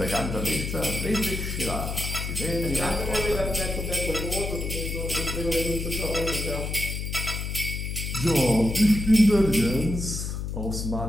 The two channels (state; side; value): noise; left; hum, 4 dB below the sound